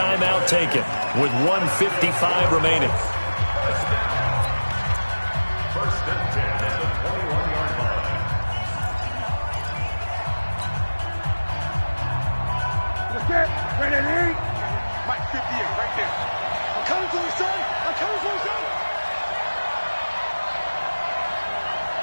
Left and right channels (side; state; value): both; inverted; correlation -1.00